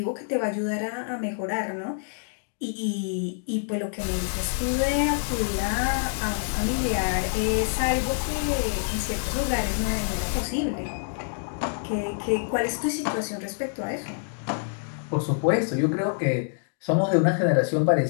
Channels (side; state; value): right; silent; digital silence